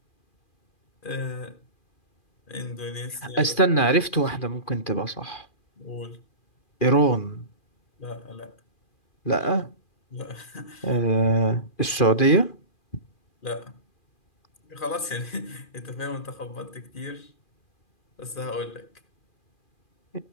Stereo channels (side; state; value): right; late; 2.4 ms